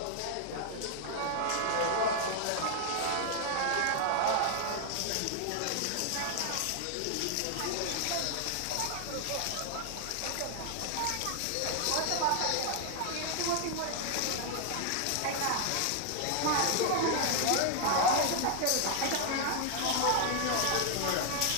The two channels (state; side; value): different; both; correlation 0.00